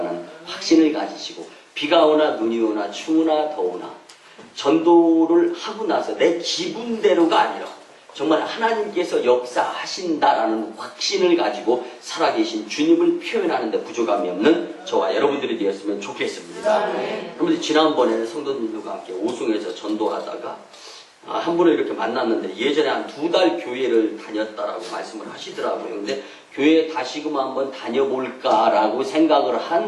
확신을 가지시고 비가 오나 눈이 오나 추우나 더우나 전도를 하고 나서 내 기분대로가 아니라 정말 하나님께서 역사하신다라는 확신을 가지고 살아계신 주님을 표현하는데 부족함이 없는 저와 여러분들이 되었으면 좋겠습니다. 여러분들 지난번에 성도님들과 함께 오송에서 전도하다가 한 분을 이렇게 만났는데 예전에 한 2달 교회를 다녔다라고 말씀을 하시더라고요. 근데 교회에 다시금 한번 다녀볼까라고 생각을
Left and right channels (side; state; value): both; identical; correlation 1.00